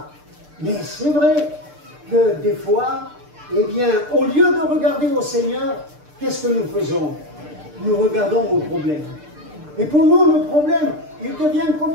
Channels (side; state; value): left; late; 6.7 ms